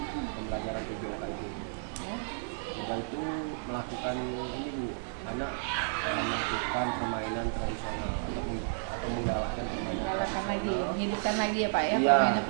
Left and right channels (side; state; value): left; silent; digital silence